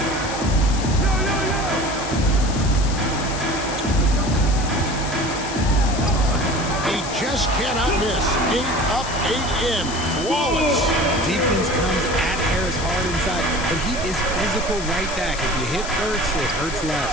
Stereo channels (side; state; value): left; noise; hiss, 10 dB below the sound